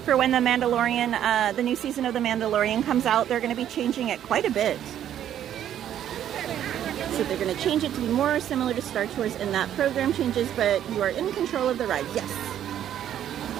for when the Mandalorian, the new season of The Mandalorian comes out, they're going to be changing it quite a bit. So they're going to change it to be more similar to Star Tours in that program changes, but you are in control of the ride. Yes.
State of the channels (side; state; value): left; quieter; 10.7 dB